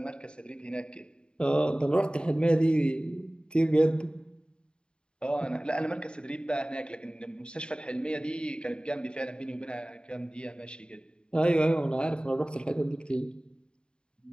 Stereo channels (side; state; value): right; late; 0.051 ms